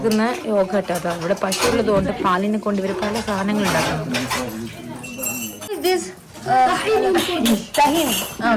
യോഗട്ടോ. ഇവിടെ പശു ഉള്ളത് കൊണ്ട് പാലിനെ കൊണ്ട് ഇവര് പല സാധനങ്ങൾ ഉണ്ടാക്കുന്നുണ്ട്.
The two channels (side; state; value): both; identical; correlation 1.00